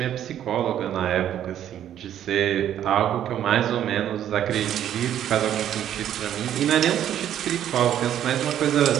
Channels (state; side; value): quieter; left; 10.7 dB